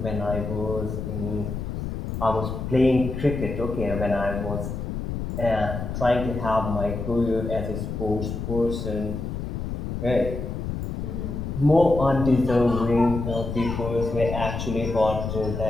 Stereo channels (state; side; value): noise; left; rumble, 5 dB below the sound